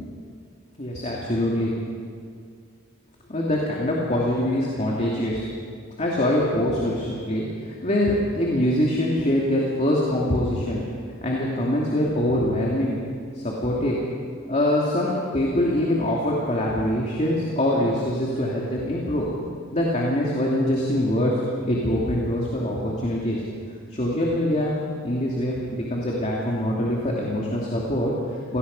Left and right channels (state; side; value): normal; both; correlation 0.53